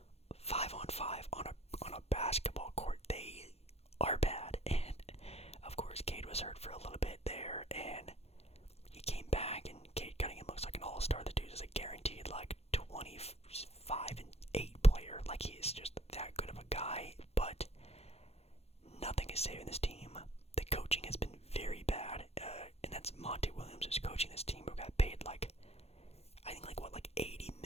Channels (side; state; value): right; late; 0.30 ms